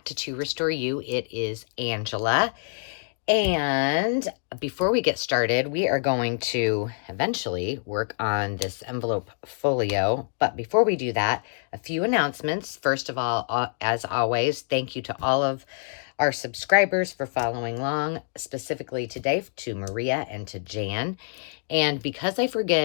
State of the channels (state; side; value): silent; right; digital silence